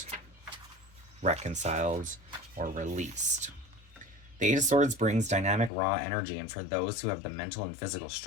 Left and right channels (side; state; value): right; drops out; at 5.7 s